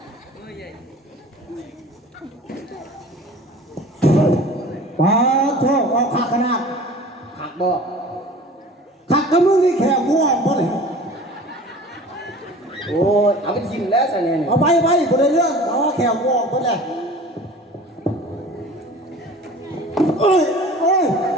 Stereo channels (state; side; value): normal; both; correlation 0.42